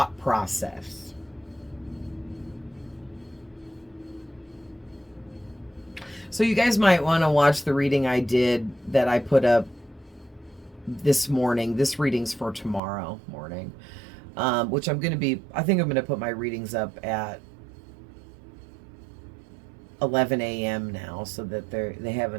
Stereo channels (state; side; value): drops out; left; at 12.8 s